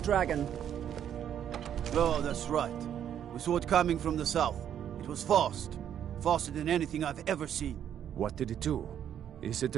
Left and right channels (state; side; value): quieter; left; 9.6 dB